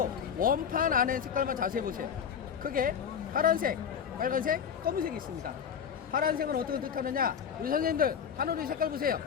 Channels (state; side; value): quieter; right; 7.6 dB